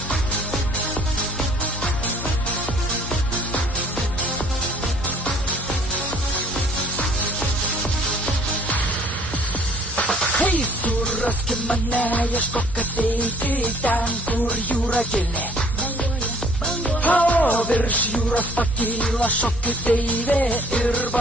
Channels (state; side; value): normal; both; correlation 0.57